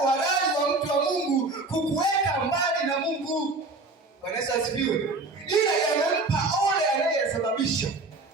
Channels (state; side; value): quieter; left; 3.3 dB